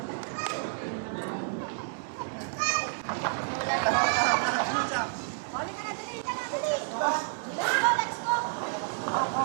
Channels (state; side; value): silent; left; digital silence